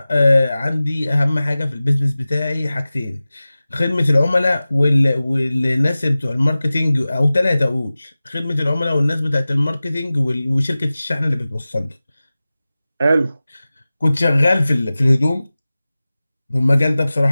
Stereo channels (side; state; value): both; inverted; correlation -0.97